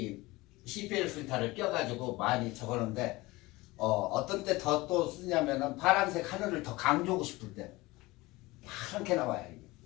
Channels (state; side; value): quieter; right; 21.0 dB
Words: CPL 필터를 껴가지고 많이 적었는데 어떤 때 더 또 쓰냐면은 파란색 하늘을 더 강조하고 싶을 때 파랗게 나와요.